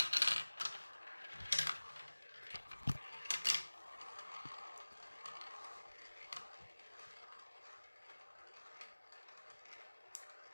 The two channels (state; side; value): inverted; both; correlation -1.00